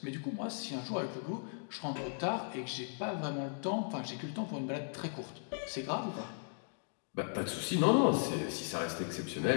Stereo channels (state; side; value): silent; right; digital silence